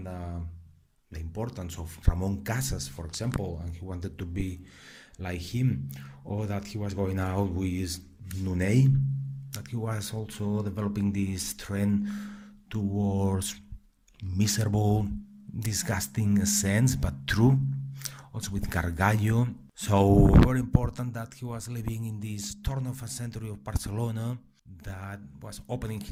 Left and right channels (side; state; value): both; identical; correlation 1.00